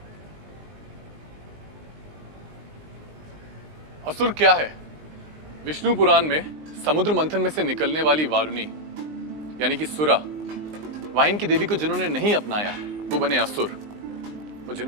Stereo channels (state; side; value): late; left; 19 ms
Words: असुर क्या है? विष्णु पुराण में समुद्र मंथन में से निकलने वाली वारुणी यानी कि सुरा, वाइन की देवी को जिन्होंने नहीं अपनाया वो बने असुर, और